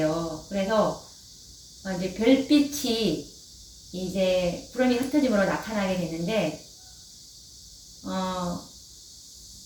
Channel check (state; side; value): identical; both; correlation 1.00